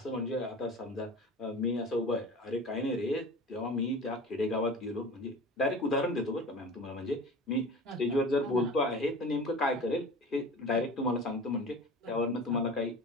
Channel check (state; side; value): normal; both; correlation 0.36